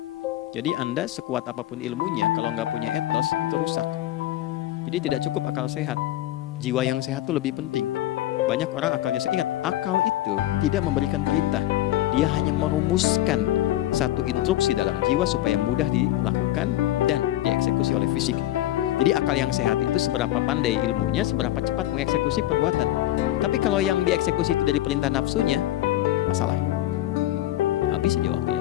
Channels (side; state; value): right; quieter; 14.3 dB